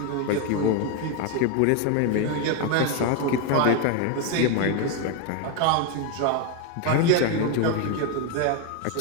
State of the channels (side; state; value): both; different; correlation 0.02